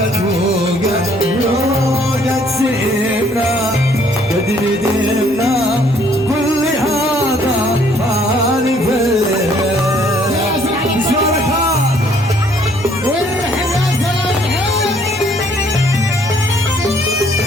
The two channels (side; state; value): both; normal; correlation 0.63